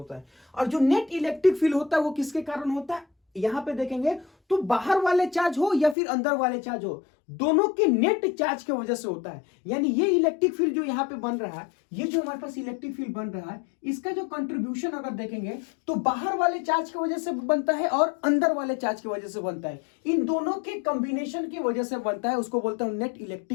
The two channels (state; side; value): drops out; right; at 6.0 s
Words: है, और जो नेट इलेक्ट्रिक फील्ड होता है वो किसके कारण होता है, यहां पे देखेंगे तो बाहर वाले चार्ज हो या फिर अंदर वाले चार्ज हो, दोनों के नेट चार्ज की वजह से होता है। यानी ये इलेक्ट्रिक फील्ड जो यहां पे बन रहा है, ये जो हमारे पास इलेक्ट्रिक फील्ड बन रहा है, इसका जो कंट्रीब्यूशन अगर देखेंगे तो बाहर वाले चार्ज की वजह से बनता है और अंदर वाले चार्ज की वजह से बनता है, इन दोनों के कॉम्बिनेशन की वजह से बनता है, उसको बोलते हैं नेट